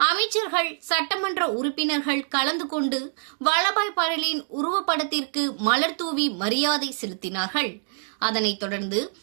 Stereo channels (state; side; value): silent; left; digital silence